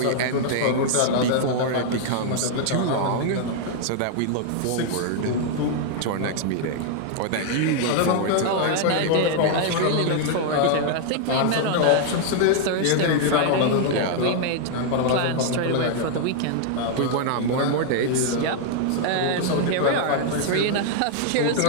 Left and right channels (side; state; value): both; different; correlation 0.00